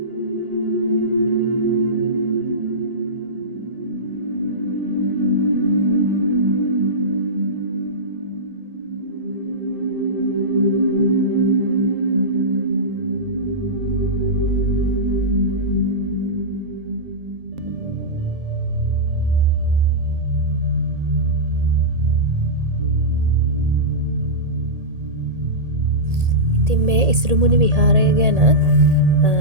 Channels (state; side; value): late; left; 1.8 ms